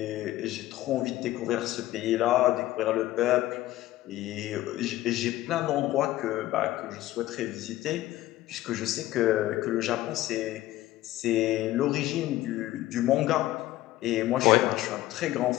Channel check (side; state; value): right; quieter; 15.8 dB